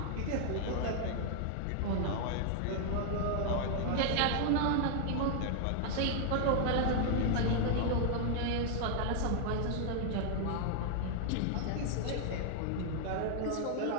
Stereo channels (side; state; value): both; different; correlation 0.00